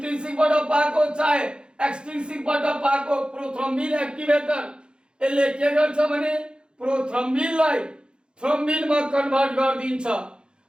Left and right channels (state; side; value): late; left; 0.051 ms